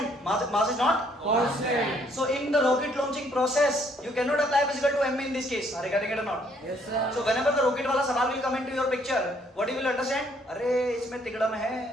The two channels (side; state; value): both; normal; correlation 0.66